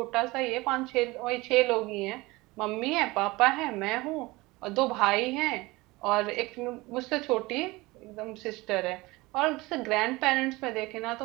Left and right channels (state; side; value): quieter; left; 21.7 dB